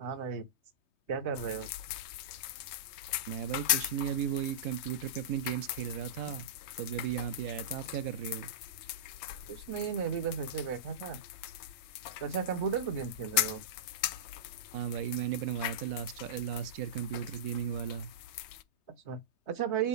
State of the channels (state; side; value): late; right; 3.2 ms